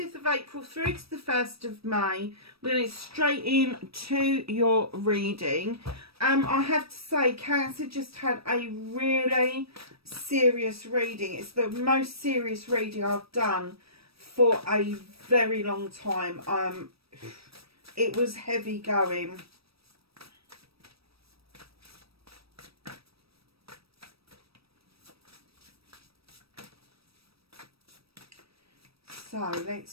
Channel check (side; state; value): left; late; 0.77 ms